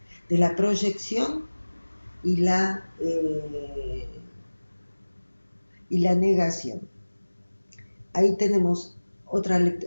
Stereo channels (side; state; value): both; inverted; correlation -1.00